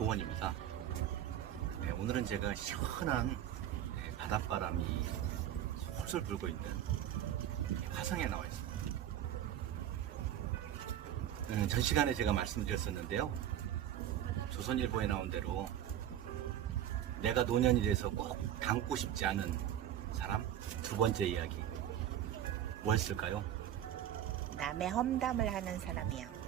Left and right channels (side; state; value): left; quieter; 11.1 dB